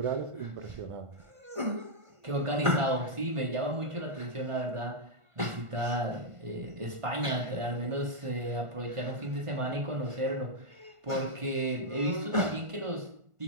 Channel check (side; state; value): left; late; 1.5 ms